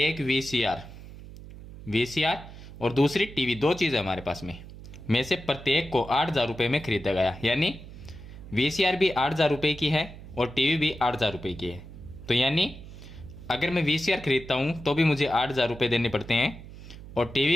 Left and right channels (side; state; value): right; noise; hum, 15 dB below the sound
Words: वीसीआर और दूसरी टीवी, दो चीज़ें हमारे पास में से प्रत्येक को 8,000 रुपये में खरीदा गया। यानी वीसीआर भी 8,000 रुपये की है और टीवी भी 8,000 रुपये की है। तो यानी अगर मैं वीसीआर खरीदता हूँ तो भी मुझे 8,000 रुपये देने पड़ते हैं और